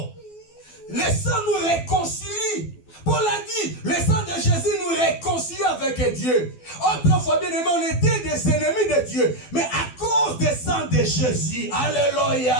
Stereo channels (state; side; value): late; right; 12 ms